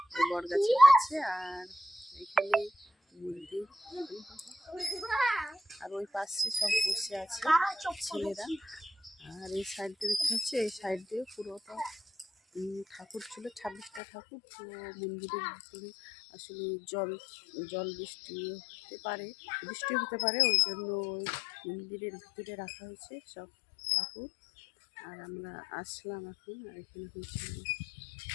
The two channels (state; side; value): drops out; right; at 14.0 s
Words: বট গাছের কাছে। আর এখানে মন্দির, আর ওই পাশে সব বসে আছে ছেলেরা। আর এই সাইড দিয়ে দেখতে হচ্ছে, এই সাইড দিয়ে পুরোটা ঠাকুর ছিল, 26টা ঠাকুর। তো মন্দিরের ভিতরে আসলে জল বৃষ্টি হতে পারে, ওই জন্য ওই মন্দিরের ভিতরে রাখা হয়েছে সব ঠাকুর। আর আমরা আসলাম এখন। আর এখানে হয়েছিল